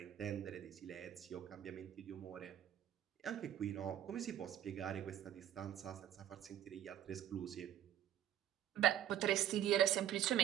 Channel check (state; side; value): quieter; left; 11.1 dB